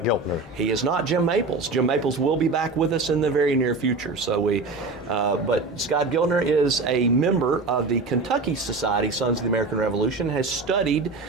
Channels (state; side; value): quieter; left; 3.7 dB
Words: Giltner. He is not Jim Maples. Jim Maples will be back with us in the very near future. But Scott Giltner is a member of the Kentucky Society Sons of the American Revolution, has studied